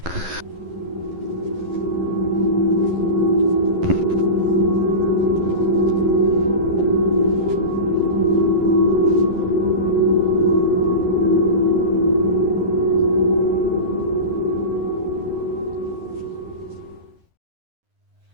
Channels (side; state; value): left; late; 11 ms